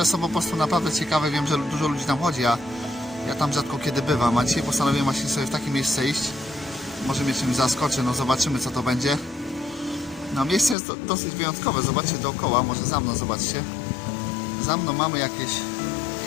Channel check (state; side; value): drops out; right; at 10.8 s